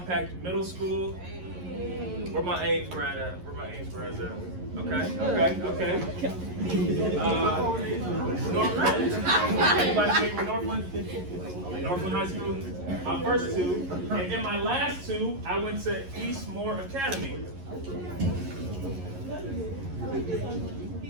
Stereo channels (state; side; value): late; left; 11 ms